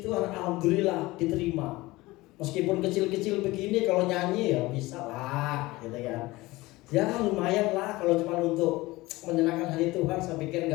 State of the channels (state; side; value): quieter; right; 20.1 dB